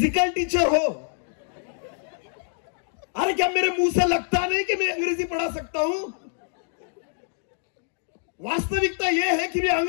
टीचर हो? अरे क्या मेरे मुंह से लगता नहीं कि मैं अंग्रेजी पढ़ा सकता हूं? वास्तविकता यह है कि मैं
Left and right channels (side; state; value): right; silent; 61 dB below the other